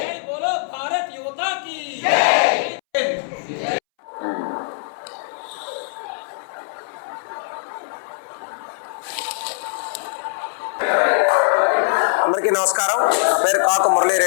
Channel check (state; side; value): silent; right; 64 dB below the other